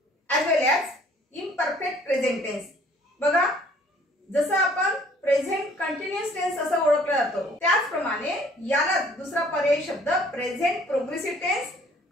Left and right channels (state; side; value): normal; both; correlation 0.57